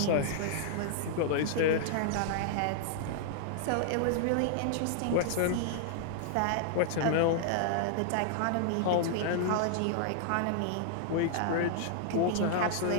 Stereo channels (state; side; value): different; both; correlation -0.01